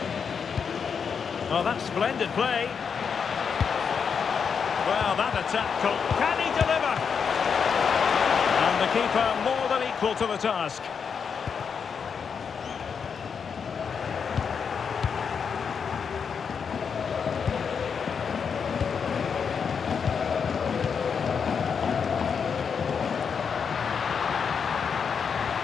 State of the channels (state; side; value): quieter; right; 6.4 dB